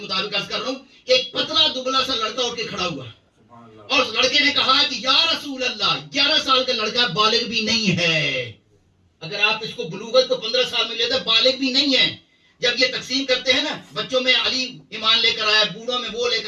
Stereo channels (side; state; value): both; identical; correlation 1.00